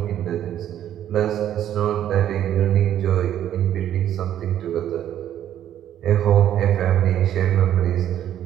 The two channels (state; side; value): quieter; left; 11.0 dB